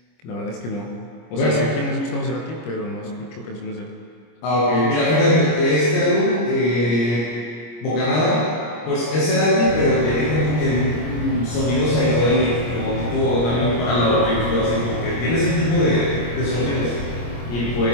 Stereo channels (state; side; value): late; right; 25 ms